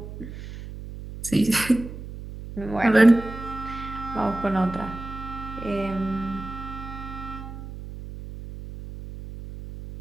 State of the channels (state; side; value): noise; right; hum, 11 dB below the sound